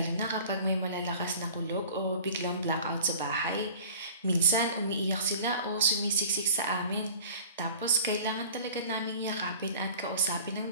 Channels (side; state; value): both; inverted; correlation -0.44